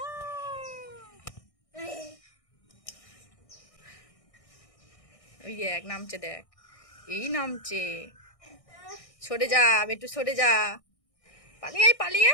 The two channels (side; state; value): right; late; 1.6 ms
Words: ওই দেখ নামছে, দেখ এই নামছে। সরে যা বেটু, সরে যা। পালিয়ে আয়, পালিয়ে